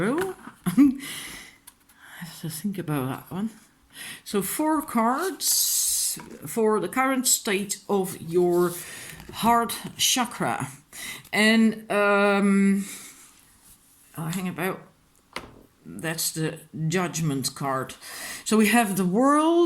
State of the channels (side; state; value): both; identical; correlation 1.00